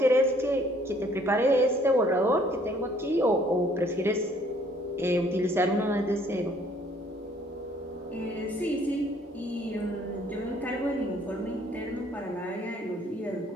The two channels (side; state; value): both; normal; correlation 0.61